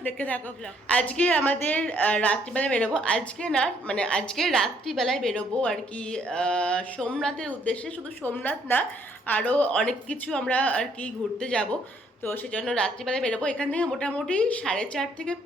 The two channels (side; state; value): both; normal; correlation 0.67